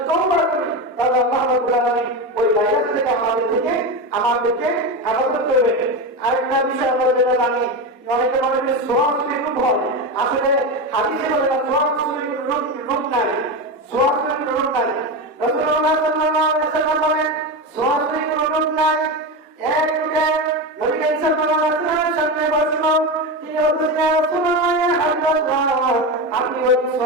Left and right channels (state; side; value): normal; both; correlation 0.18